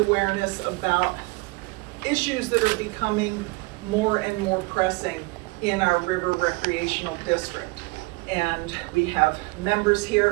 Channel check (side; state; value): left; quieter; 26.3 dB